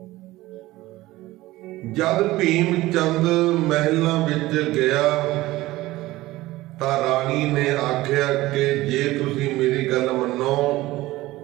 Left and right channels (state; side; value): quieter; left; 17.9 dB